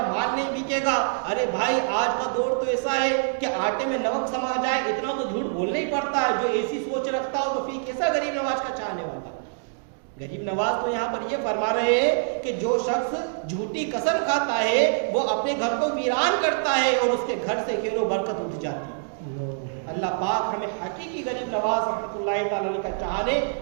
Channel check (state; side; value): silent; left; digital silence